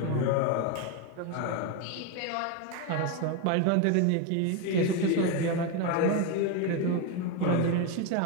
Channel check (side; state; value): both; different; correlation 0.02